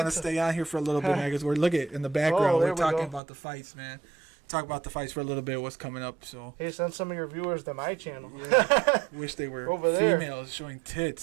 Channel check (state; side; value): drops out; left; at 3.2 s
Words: to Pizza. stay on here for a little bit, man, because we're look at in the background. there We're we talking go. about the fights, man. Talk about the fights for a little bit. What's coming up? So hey, send some of your viewers to my channel. wish they were Over there. females showing